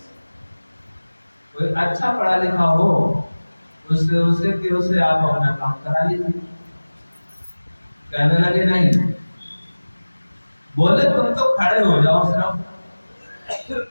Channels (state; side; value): inverted; both; correlation -1.00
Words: कोई अच्छा पढ़ा लिखा हो उससे आप अपना काम करा लीजिए। कहने लगे नहीं, बोले तुम तो खड़े हो जाओ,